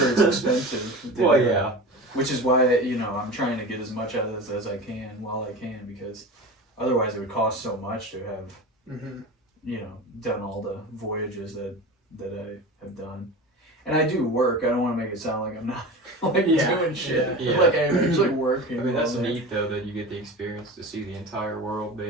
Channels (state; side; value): normal; both; correlation 0.31